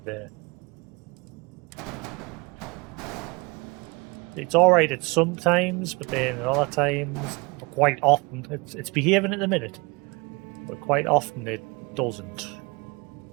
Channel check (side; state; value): left; quieter; 27.1 dB